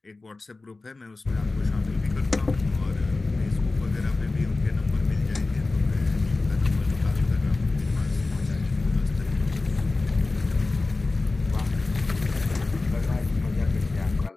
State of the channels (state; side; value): quieter; right; 3.4 dB